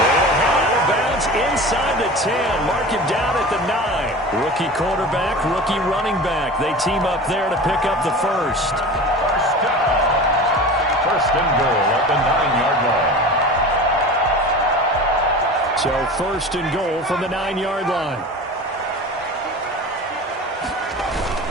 head out of bounds inside the 10. Mark him down at the 9. Rookie quarterback, rookie running back. They team up there to pick up the 1st. 1st and goal at the 9-yard line. So 1st and goal from the 9-yard line.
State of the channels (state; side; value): normal; both; correlation 0.34